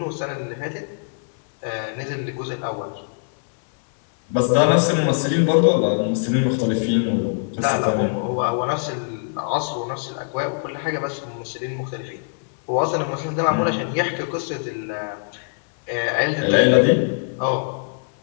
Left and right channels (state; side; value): silent; right; 64 dB below the other